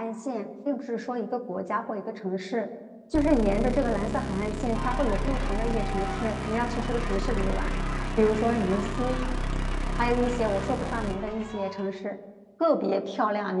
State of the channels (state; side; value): identical; both; correlation 1.00